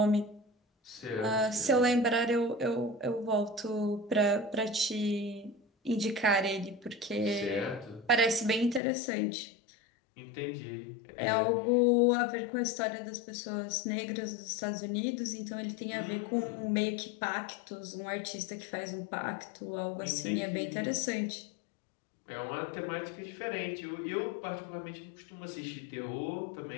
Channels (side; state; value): right; drops out; at 8.8 s